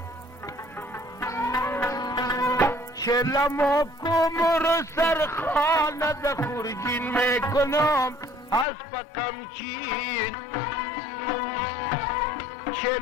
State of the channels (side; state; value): right; drops out; at 8.7 s